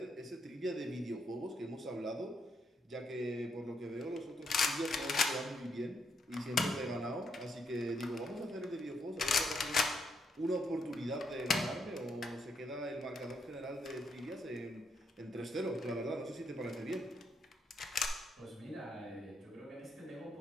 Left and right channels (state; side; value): normal; both; correlation 0.77